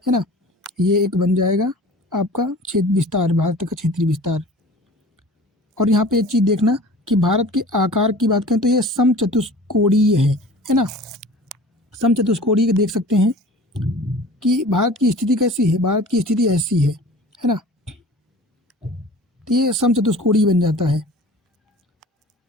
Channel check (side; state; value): both; normal; correlation 0.42